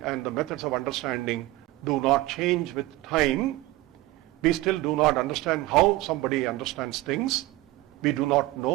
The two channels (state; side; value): quieter; left; 18.4 dB